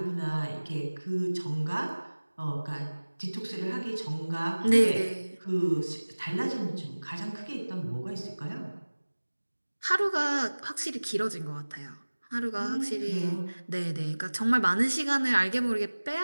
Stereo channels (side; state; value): both; inverted; correlation -1.00